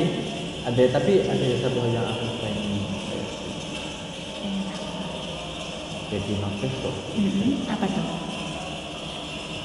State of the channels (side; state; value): both; identical; correlation 1.00